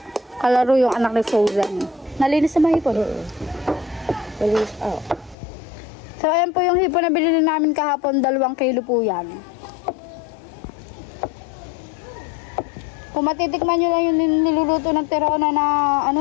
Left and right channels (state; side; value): drops out; right; at 5.4 s